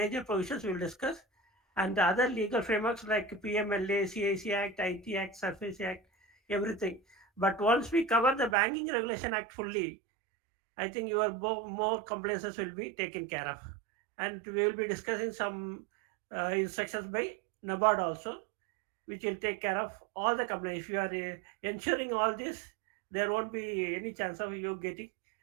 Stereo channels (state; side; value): drops out; left; at 8.6 s